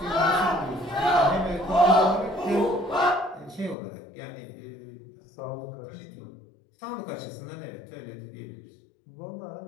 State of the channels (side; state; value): right; drops out; at 3.8 s